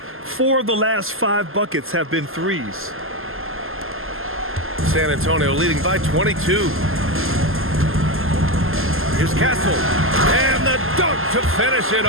4 of the last 5 buckets have been threes. San Antonio leading by 22. Here's Castle. And the dunk to finish it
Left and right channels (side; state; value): left; late; 0.60 ms